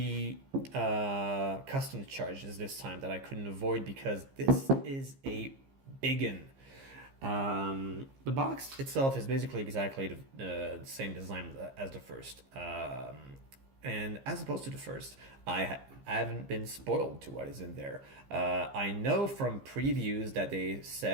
customs charges this time that I couldn't avoid, because this is a biggin. The box itself is basically exactly the same design as the first. And as opposed to the first, I haven't been spoiled to what is in there. I know from previews that they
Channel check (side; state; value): left; late; 15 ms